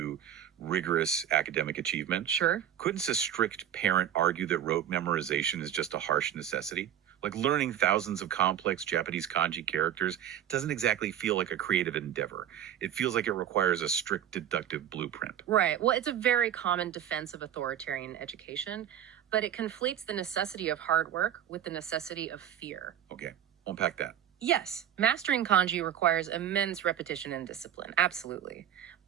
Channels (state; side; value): quieter; left; 10.1 dB